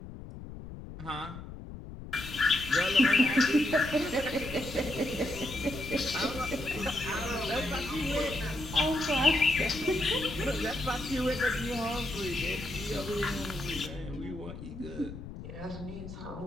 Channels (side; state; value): left; noise; rumble, 11 dB below the sound